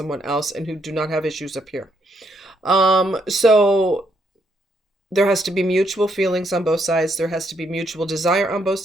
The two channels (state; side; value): normal; both; correlation 0.75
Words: else and who do not have issues up here. So there has to be mutual feelings on both sides. There has to be mutual desire on both